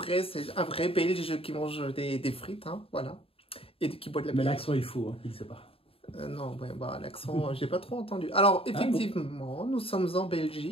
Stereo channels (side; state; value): right; late; 0.27 ms